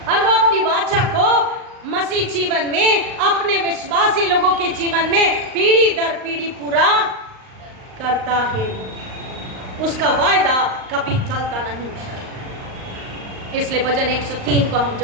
और वो अपनी वाचा को मसीह जीवन में, अपने विश्वासी लोगों के जीवन में पीढ़ी दर पीढ़ी पूरा करता है। उसका वायदा कभी चलता नहीं। इसलिए भजन 103 को हम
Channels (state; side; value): late; left; 38 ms